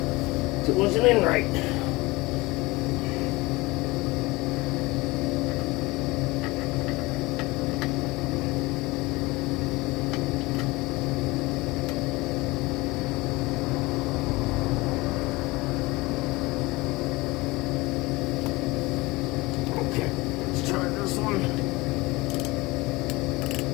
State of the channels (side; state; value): right; quieter; 22.2 dB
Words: It wasn't in right. Okay, let's try this one.